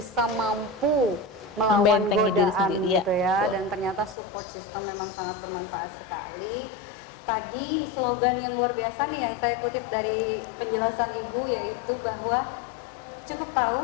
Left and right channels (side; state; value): right; drops out; at 4.2 s